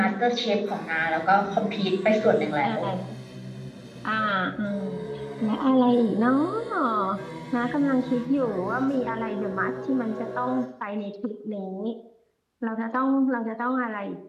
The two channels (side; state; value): both; identical; correlation 1.00